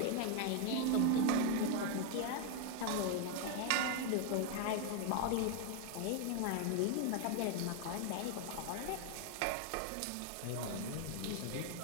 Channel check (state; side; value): different; both; correlation 0.01